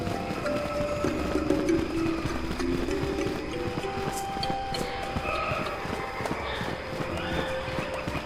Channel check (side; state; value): both; identical; correlation 1.00